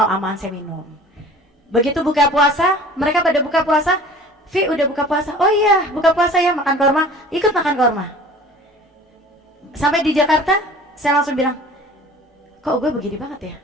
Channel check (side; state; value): both; normal; correlation 0.45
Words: aman saya minum. Begitu buka puasa, mereka pada buka puasa, Vi udah buka puasa, oh iya buka puasa ya, makan korma, ikut makan korma. Sampai di Jakarta saya langsung bilang, kok gue begini banget ya,